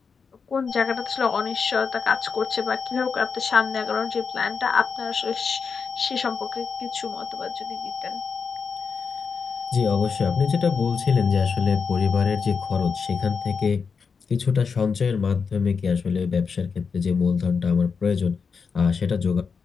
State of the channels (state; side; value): quieter; right; 5.6 dB